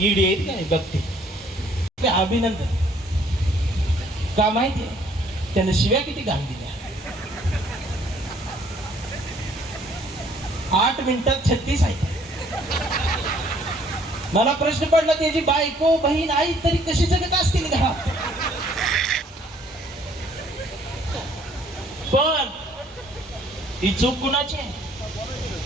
आहेत ना बघते ते अभिनंदन का माहितीये, त्याने शिव्या किती घाण दिल्या. 8 मिनिटात 36 आहे. मला प्रश्न पडला त्याची बायको बहीण आई तरी कशी जगत असतील घरात. पण ही चूक कुणाची आहे,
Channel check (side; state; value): both; normal; correlation 0.61